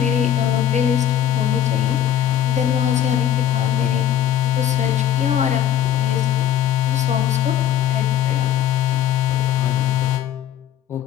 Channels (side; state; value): right; quieter; 10.6 dB